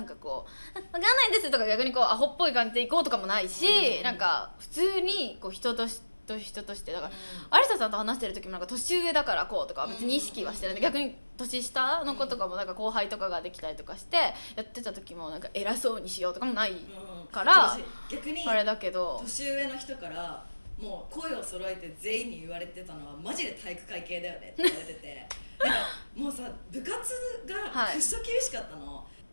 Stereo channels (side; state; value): both; inverted; correlation -1.00